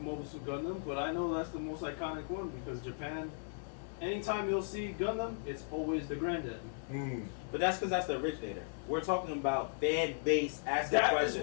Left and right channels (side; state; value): right; silent; digital silence